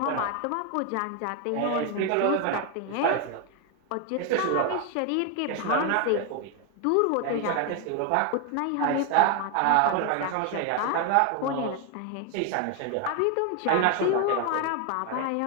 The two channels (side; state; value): both; different; correlation 0.01